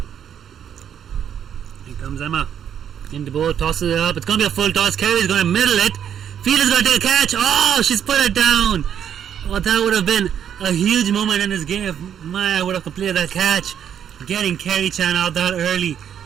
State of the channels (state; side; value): quieter; left; 9.0 dB